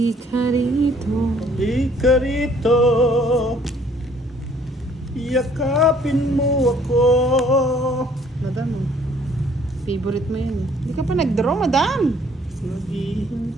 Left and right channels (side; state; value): both; normal; correlation 0.60